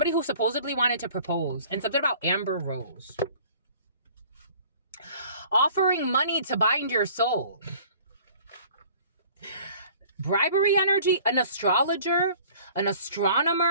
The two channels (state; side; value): inverted; both; correlation -0.50